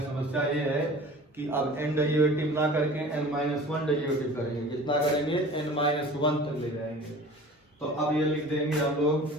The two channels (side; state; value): both; normal; correlation 0.42